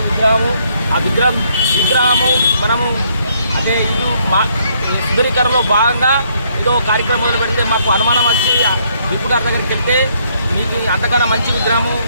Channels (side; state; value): both; inverted; correlation -0.69